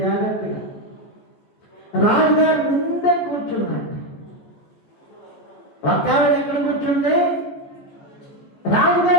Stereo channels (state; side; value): late; right; 14 ms